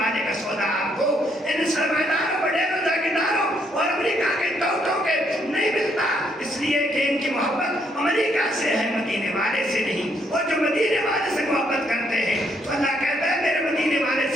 کا سودا آپ کو ان سرمایداروں، بڑے جاگیرداروں اور امریکہ کے ٹوٹوں کے نہیں ملتا، اس لیے کہ ان کی محبت امریکہ سے ہے، مدینے والے سے نہیں۔ اور جو مدینے والے سے محبت کرتے ہیں تو اللہ کہتا ہے میرے مدینے والے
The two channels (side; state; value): both; normal; correlation 0.72